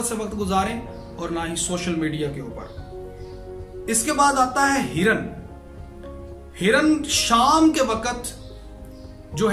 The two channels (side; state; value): both; identical; correlation 1.00